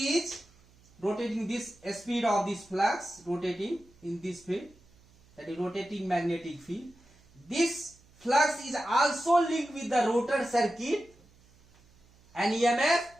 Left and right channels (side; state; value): right; noise; hum, 29 dB below the sound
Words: rotating, this speed of this flux rotating in this field, that is rotating magnetic field. This flux is also linked with the rotor circuit and EMF